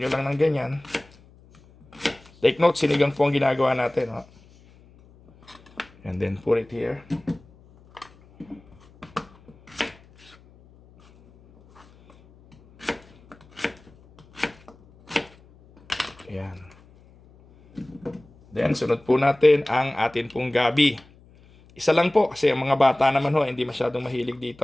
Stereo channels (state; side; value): noise; left; hum, 27 dB below the sound